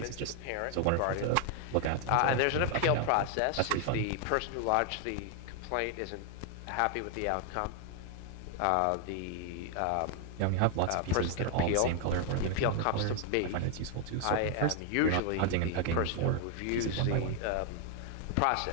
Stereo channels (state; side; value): different; both; correlation 0.00